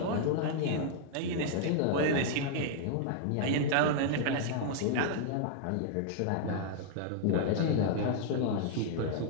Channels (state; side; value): different; both; correlation -0.01